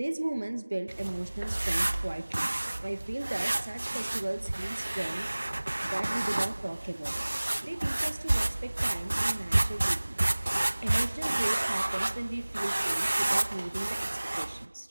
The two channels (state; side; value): inverted; both; correlation -1.00